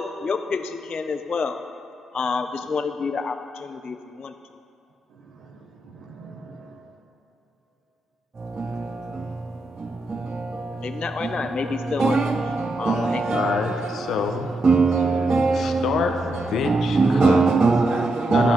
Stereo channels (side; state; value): both; normal; correlation 0.83